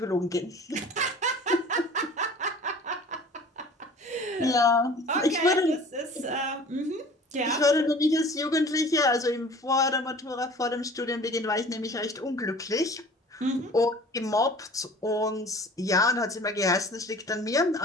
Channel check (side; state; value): both; normal; correlation 0.45